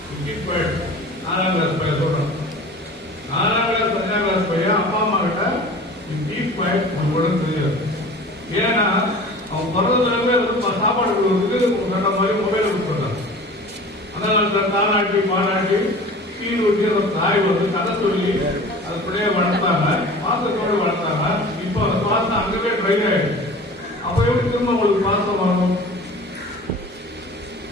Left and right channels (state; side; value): normal; both; correlation 0.41